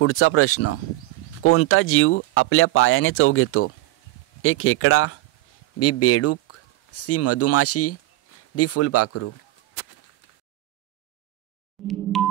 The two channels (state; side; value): quieter; left; 18.2 dB